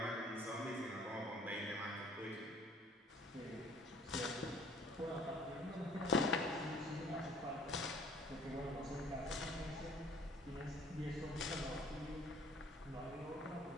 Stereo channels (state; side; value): normal; both; correlation 0.55